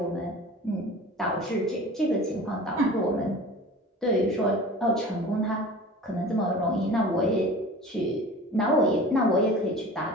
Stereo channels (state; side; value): normal; both; correlation 0.39